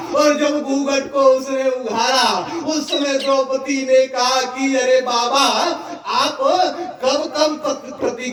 और जब घूंघट को उसने उघारा उस समय द्रौपदी ने कहा कि अरे बाबा आप कब कब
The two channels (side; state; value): both; identical; correlation 1.00